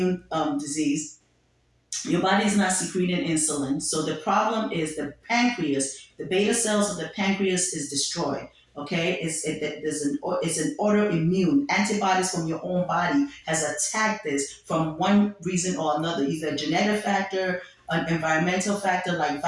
disease. Your body is not secreting insulin. So the problem is the pancreas, the beta cells of the pancreas is destroyed. Okay, it's an autoimmune. Antibodies from your own body has attacked this from one reason or another, either a genetic factor, an environmental factor like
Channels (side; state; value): both; identical; correlation 1.00